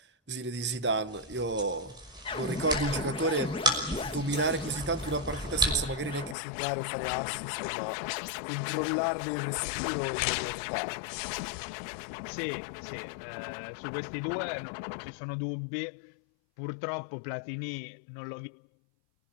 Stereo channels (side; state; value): right; drops out; at 6.4 s